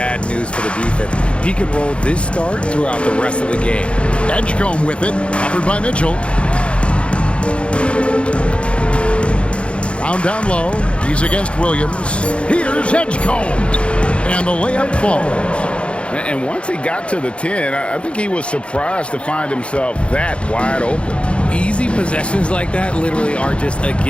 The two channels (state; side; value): late; right; 0.059 ms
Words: news for the defense. He can roll this start throughout the rest of the game. Edgecombe with it, covered by Mitchell. Brown down low. He's against Williams. Here's Edgecombe. And the layup falls. And once he got to the 10, I think he was surprised to find himself that wide open. Easy possessions like that literally are just a